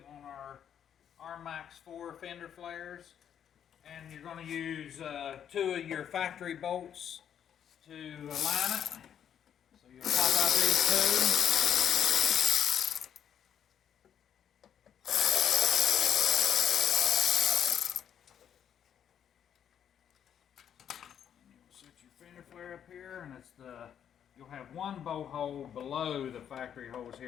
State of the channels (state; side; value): quieter; right; 9.0 dB